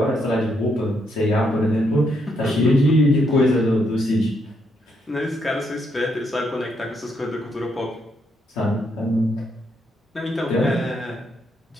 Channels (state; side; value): normal; both; correlation 0.76